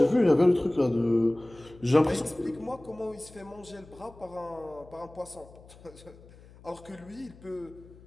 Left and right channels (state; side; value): noise; left; hum, 22 dB below the sound